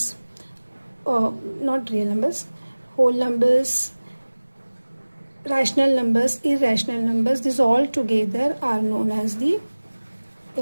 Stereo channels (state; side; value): inverted; both; correlation -1.00